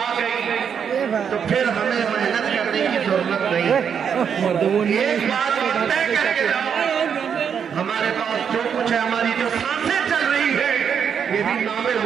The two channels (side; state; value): left; quieter; 7.4 dB